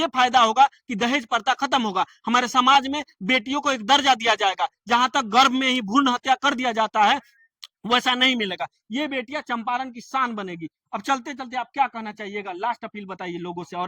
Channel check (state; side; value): identical; both; correlation 1.00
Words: फायदा होगा कि दहेज प्रथा खत्म होगा, हमारे समाज में बेटियों को एक दर्जा दिया जाएगा। जहां तक गर्भ में ही भ्रूण हत्या कर दिया जाता है, वैसा नहीं मिलेगा। ये बेटियां चंपारण की शान बनेगी। अब चलते चलते आप क्या कहना चाहिएगा, लास्ट अपील बताइए लोगों से